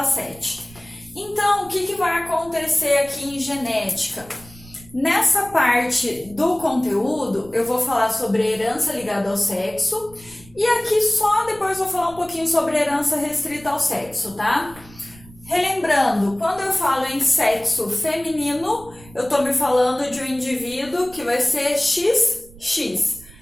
Então, o que vai acontecer aqui em genética? Nessa parte do conteúdo, eu vou falar sobre herança ligada ao sexo e aqui só depois vou falar um pouquinho sobre herança restrita ao sexo, tá? Relembrando, quando eu falo em sexo feminino, eu tô me falando de um indivíduo que vai ser XX.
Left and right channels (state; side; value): noise; right; rumble, 22 dB below the sound